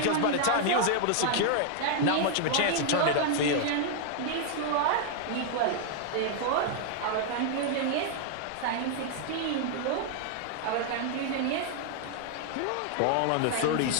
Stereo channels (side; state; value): both; different; correlation 0.00